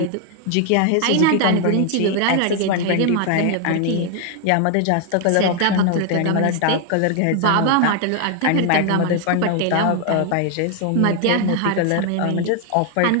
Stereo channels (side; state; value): both; different; correlation 0.00